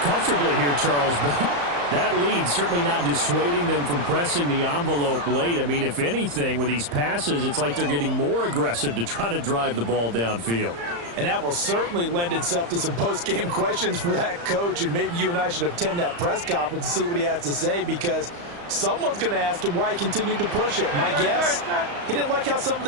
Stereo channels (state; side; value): late; left; 35 ms